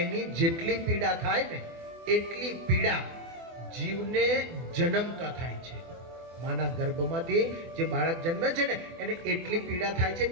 જેટલી પીડા થાય ને એટલી પીડા જીવને જન્મતા થાય છે. માના ગર્ભમાંથી જે બાળક જન્મે છે ને એને એટલી પીડા થાય છે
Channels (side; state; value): left; late; 24 ms